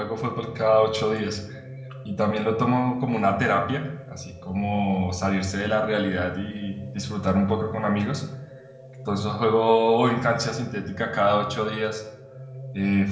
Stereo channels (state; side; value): identical; both; correlation 1.00